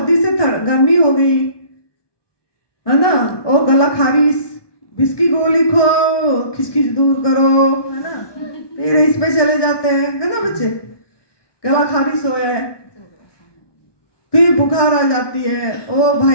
से गर्मी हो गई, है ना, ओ गला खारिश, बिस्की गोली खो, खिचखिच दूर करो, है ना, फिर इस पे चले जाते हैं, है ना बच्चे, गला खारिश हो है, फिर बुखार आ जाती है, ओ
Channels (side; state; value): right; late; 1.2 ms